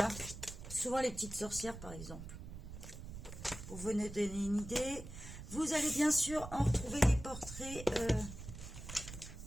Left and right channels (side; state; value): right; noise; rumble, 11 dB below the sound